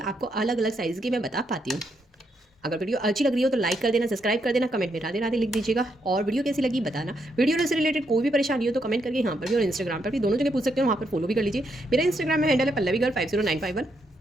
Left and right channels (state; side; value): normal; both; correlation 0.78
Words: अलग अलग साइज़ की मैं बता पाती हूँ। अगर वीडियो अच्छी लग रही हो तो लाइक कर देना, सब्सक्राइब कर देना, कमेंट में राधे राधे लिख दीजिएगा, और वीडियो कैसी लगी बताना। वीडियो से रिलेटेड कोई भी परेशानी हो तो कमेंट करके यहाँ पर भी और इंस्टाग्राम पर भी, दोनों जगह पूछ सकते हो, वहाँ पर फॉलो भी कर लीजिए। मेरा इंस्टाग्राम में हैंडल है पल्लवीगर 50951,